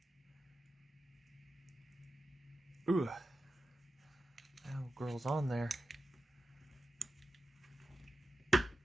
Ooh. Oh, girl's on there.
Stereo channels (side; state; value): both; normal; correlation 0.91